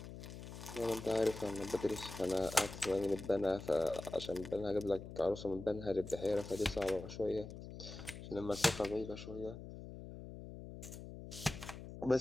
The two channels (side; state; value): left; noise; hum, 11 dB below the sound